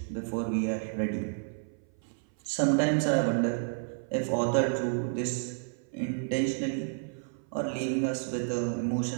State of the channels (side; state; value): left; silent; 56 dB below the other